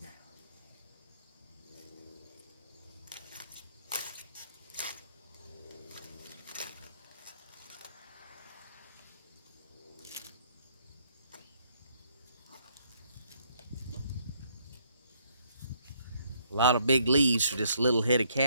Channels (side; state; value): both; inverted; correlation -0.69